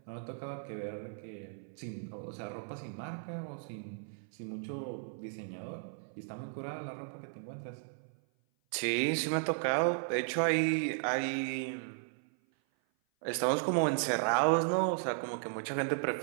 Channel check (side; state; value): left; silent; 54 dB below the other